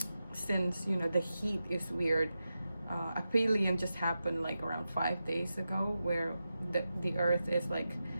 Since the heat is weird. Aphelion just happened like around 5 days ago, where the earth is like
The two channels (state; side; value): inverted; both; correlation -0.91